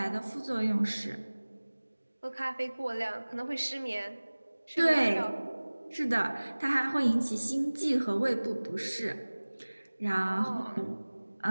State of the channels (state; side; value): inverted; both; correlation -1.00